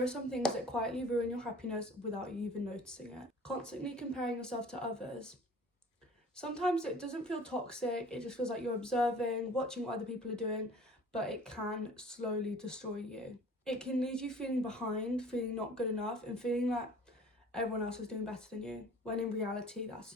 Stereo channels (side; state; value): both; normal; correlation 0.48